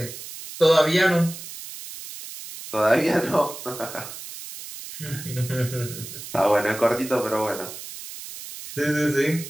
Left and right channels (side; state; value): right; noise; hiss, 12 dB below the sound